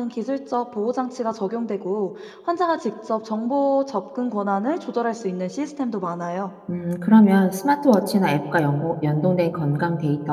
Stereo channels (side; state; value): both; identical; correlation 1.00